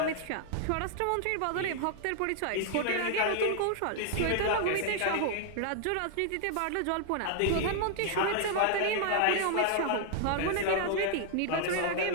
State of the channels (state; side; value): different; both; correlation 0.00